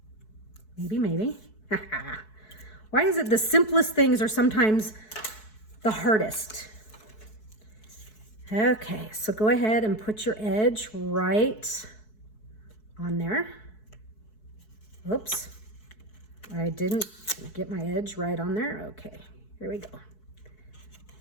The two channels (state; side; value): late; right; 4.6 ms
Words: Why is it the simplest things are sometimes the hardest? Okay, so go ahead and put your edge right on there. Oops, I didn't get my edge right on there. Okay, here we go.